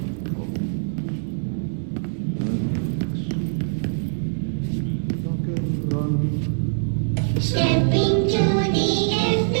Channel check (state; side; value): silent; left; digital silence